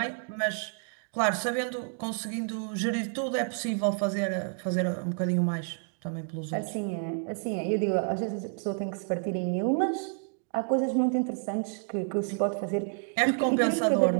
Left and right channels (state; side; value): silent; left; 58 dB below the other